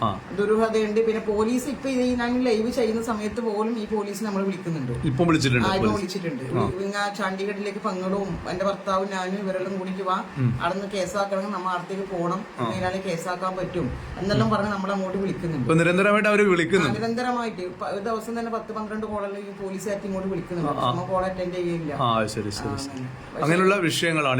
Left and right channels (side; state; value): both; identical; correlation 1.00